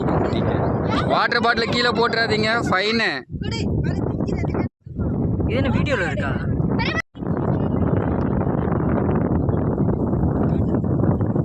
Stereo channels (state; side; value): identical; both; correlation 1.00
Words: குட்டிங்க. வாட்டர் பாட்டில் கீழே போட்டுறாதீங்க, ஃபைனு. இது என்ன வீடியோவில் இருக்கா?